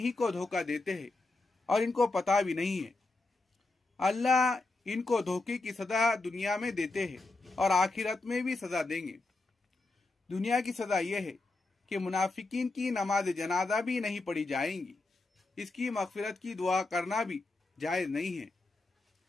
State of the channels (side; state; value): right; quieter; 3.2 dB